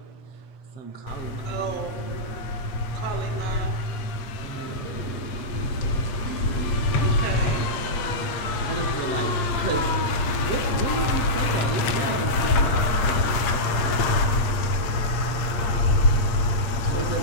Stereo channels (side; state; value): right; late; 8.5 ms